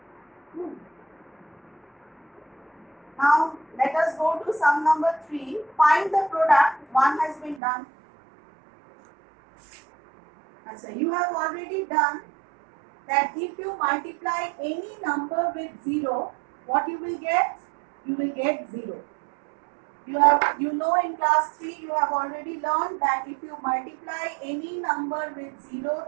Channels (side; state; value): left; drops out; at 7.6 s